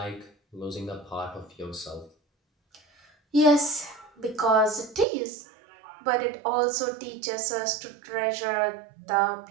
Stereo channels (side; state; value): left; drops out; at 5.1 s